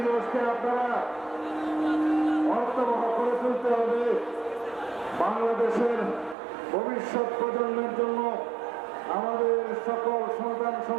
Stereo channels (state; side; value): drops out; left; at 6.4 s